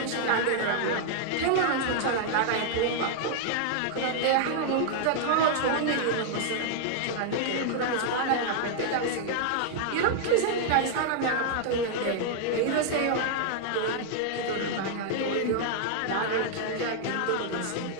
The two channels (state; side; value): different; both; correlation -0.01